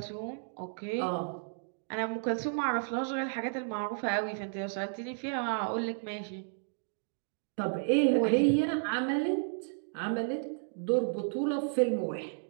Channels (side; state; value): left; silent; digital silence